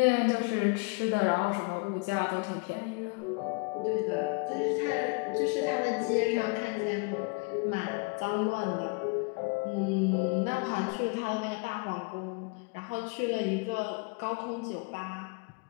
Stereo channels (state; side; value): quieter; right; 32.4 dB